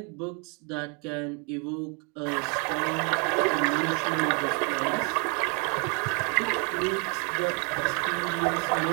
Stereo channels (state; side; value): quieter; left; 34.8 dB